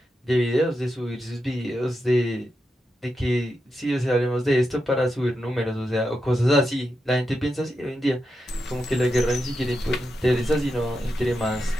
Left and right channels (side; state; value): both; normal; correlation 0.87